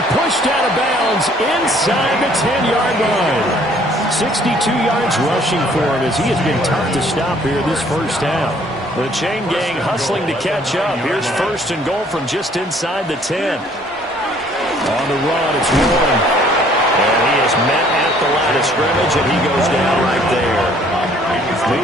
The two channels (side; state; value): both; normal; correlation 0.59